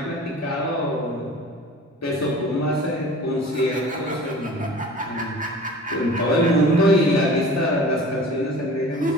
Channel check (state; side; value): normal; both; correlation 0.42